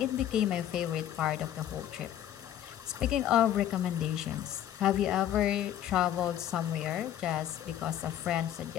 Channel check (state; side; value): quieter; right; 11.1 dB